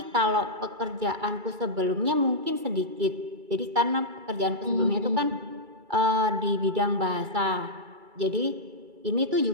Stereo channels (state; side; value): late; left; 2.3 ms